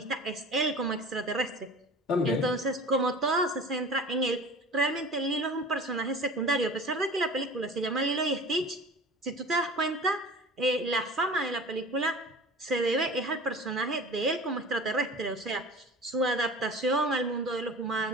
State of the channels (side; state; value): both; normal; correlation 0.39